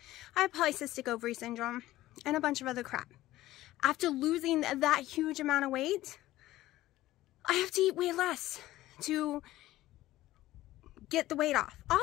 I had polycystic ovary syndrome and a bunch of other crap. After losing that huge amount of weight, I have to eat way less to get the weight off.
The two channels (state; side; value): quieter; right; 15.9 dB